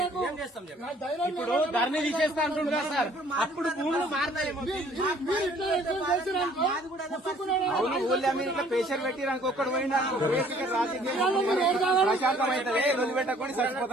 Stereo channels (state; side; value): normal; both; correlation 0.57